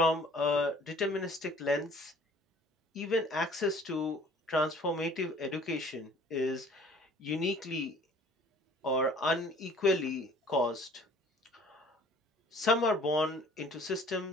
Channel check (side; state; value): both; normal; correlation 0.52